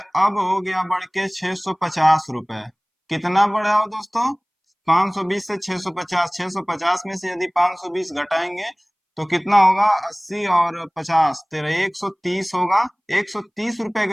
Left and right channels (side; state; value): both; identical; correlation 1.00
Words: अब हो गया बढ़ के 650 रुपए। कितना बढ़ा हो दोस्तों? 520 से 650, 650 में से यदि 520 घटाएंगे तो कितना होगा 80 और 50 तेरह 130 होगा। 130 रुपए